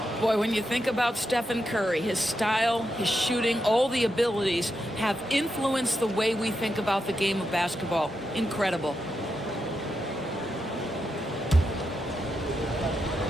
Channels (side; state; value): both; normal; correlation 0.85